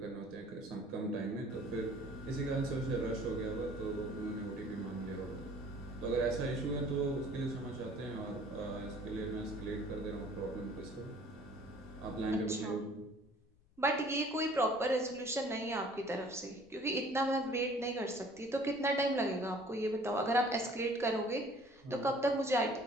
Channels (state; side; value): noise; left; rumble, 29 dB below the sound